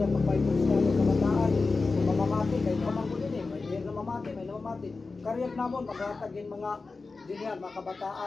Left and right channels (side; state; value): right; quieter; 4.0 dB